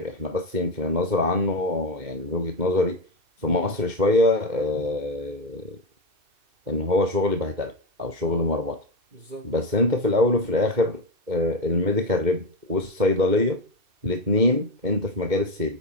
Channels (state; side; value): late; left; 2.7 ms